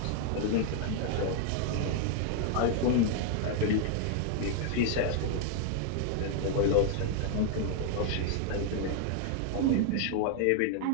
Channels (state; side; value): different; both; correlation 0.00